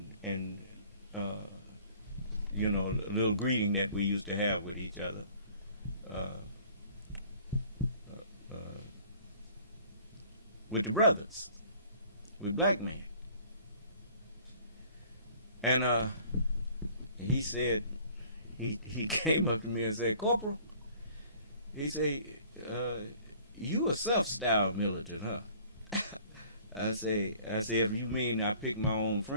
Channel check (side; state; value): both; inverted; correlation -0.53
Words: a little greeting that we used to have with each other. With the brothers, with black men. And he said, he came up to me and said, "Corporal," he said, "You a self-styled militant, huh?" I say, if you mean I pick my own